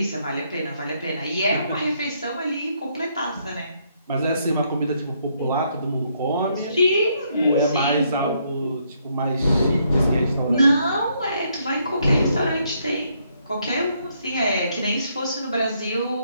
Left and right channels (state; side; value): inverted; both; correlation -0.73